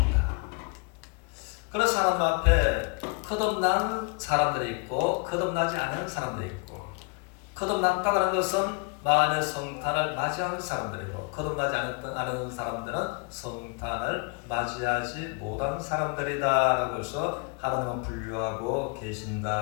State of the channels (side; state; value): right; quieter; 33.6 dB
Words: 그래서 하나님 앞에 거듭난 사람들이 있고 거듭나지 않은 사람들이 있고, 거듭났다고 하는 것은 마음의 성탄을 맞이하는 사람들이고, 거듭나지 않은 사람들은 성탄을 맞이하지 못한 사람들이다 라고 해서 하나님은 분류하고